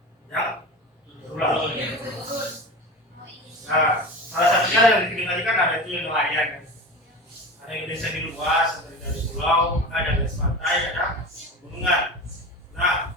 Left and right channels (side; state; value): both; normal; correlation 0.31